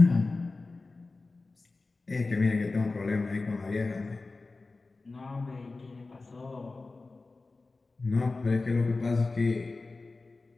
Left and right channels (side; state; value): right; quieter; 3.6 dB